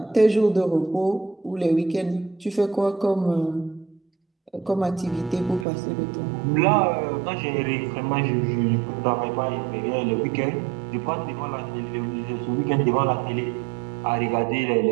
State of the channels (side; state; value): left; drops out; at 5.7 s